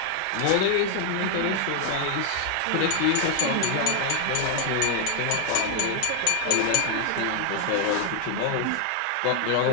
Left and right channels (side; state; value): both; different; correlation 0.00